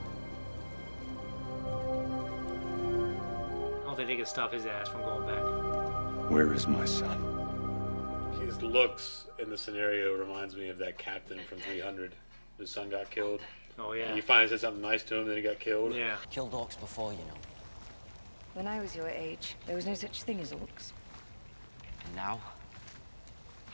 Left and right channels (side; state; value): both; inverted; correlation -1.00